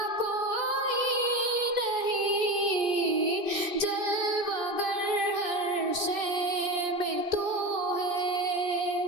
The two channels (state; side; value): late; left; 2.6 ms